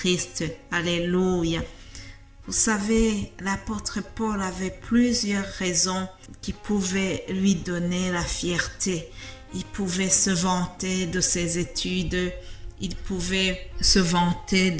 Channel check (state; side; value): identical; both; correlation 1.00